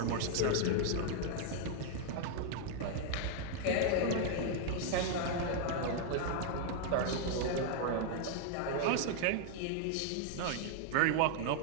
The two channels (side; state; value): both; different; correlation 0.00